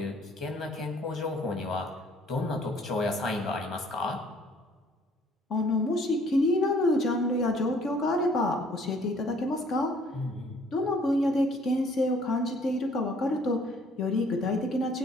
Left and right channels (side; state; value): both; normal; correlation 0.59